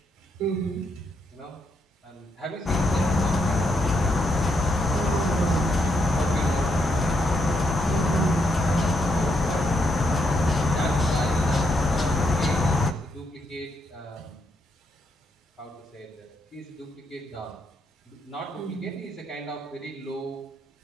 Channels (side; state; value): both; normal; correlation 0.78